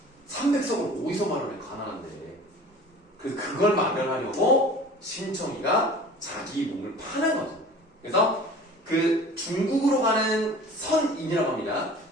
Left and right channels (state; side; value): normal; both; correlation 0.43